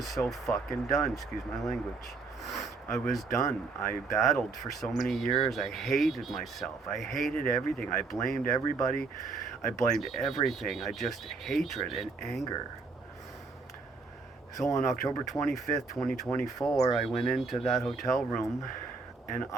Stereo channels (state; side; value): quieter; left; 4.1 dB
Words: so fucking done. Excuse my language. I was done. I battled for so many years. I hated myself. I hated everything. I blamed everybody. I blamed everything. I just hatred and anger. So on October 25th, 2024, I went into that hotel room and